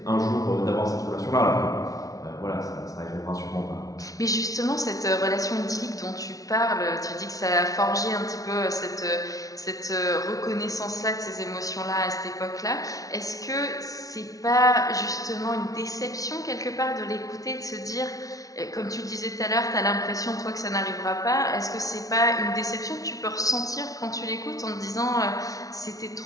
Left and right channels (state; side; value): late; right; 0.17 ms